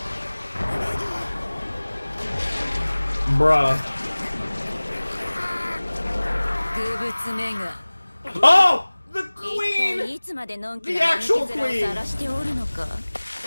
Bruh. Oh! The queen! The actual queen!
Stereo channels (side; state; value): both; inverted; correlation -1.00